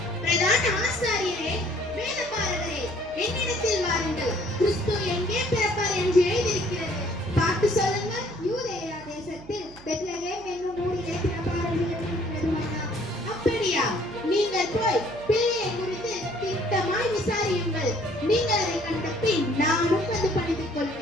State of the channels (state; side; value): noise; right; hum, 20 dB below the sound